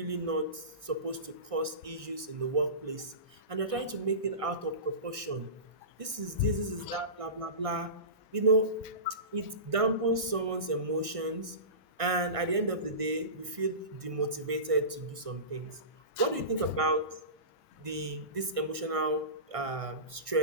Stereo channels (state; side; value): late; left; 1.6 ms